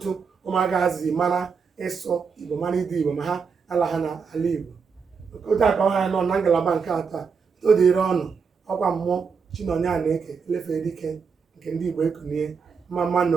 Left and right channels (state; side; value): quieter; left; 5.7 dB